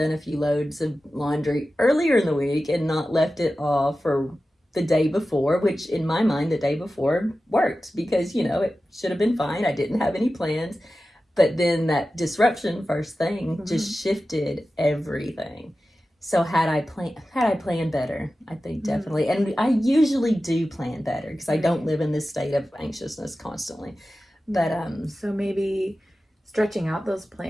a few loads of laundry earlier in the week and not left it off for the day before, which in my mind, the day before worked because, it should have been fine. I didn't have any plans. But then that disruption first thing just shifted everything. So had I planned better, I think definitely. And I usually do plan better because I don't live in this state of anxiousness constantly. But so maybe stretching out those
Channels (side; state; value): both; normal; correlation 0.94